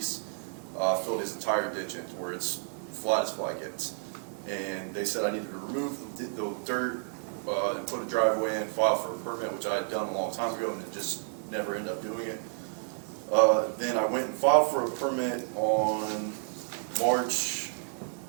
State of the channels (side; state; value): left; silent; 56 dB below the other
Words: filled his entire ditch into where it's flat as fly gets. And they said I needed to remove the dirt and put a driveway in, file for a permit, which I had done a long time ago and then just never ended up doing it. Then I went and filed for a permit on March